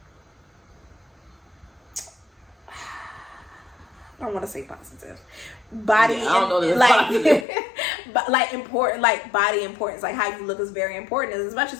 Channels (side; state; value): right; drops out; at 7.5 s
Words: I don't want to say positive. Body, I don't know like important, like body importance, like how you look is very important. As much